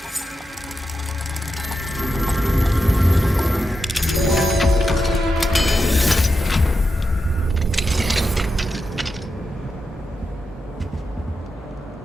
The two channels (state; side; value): normal; both; correlation 0.88